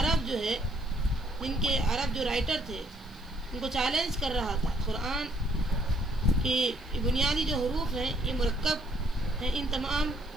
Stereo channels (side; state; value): left; noise; hiss, 29 dB below the sound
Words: جو ہے، جن کے عرب جو رائٹر تھے ان کو چیلنج کر رہا تھا قرآن کی بنیادی جو حروف ہیں یہ مرکب ہیں ان تمام